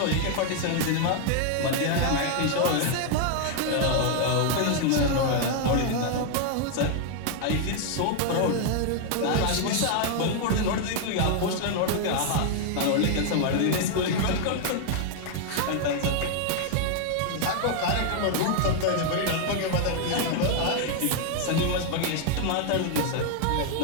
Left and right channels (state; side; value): different; both; correlation 0.00